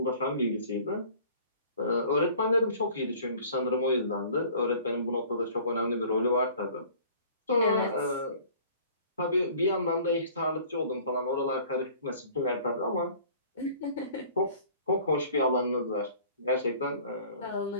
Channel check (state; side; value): inverted; both; correlation -0.50